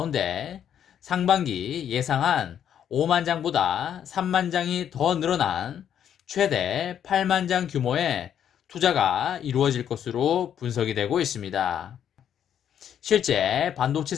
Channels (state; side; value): quieter; right; 9.3 dB